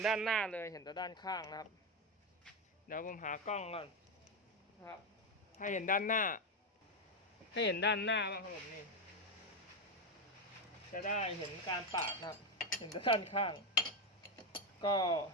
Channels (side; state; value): both; normal; correlation 0.09